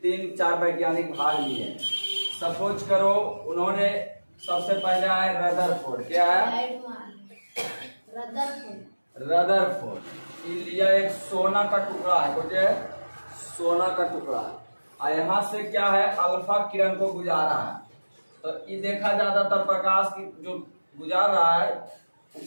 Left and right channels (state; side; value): inverted; both; correlation -1.00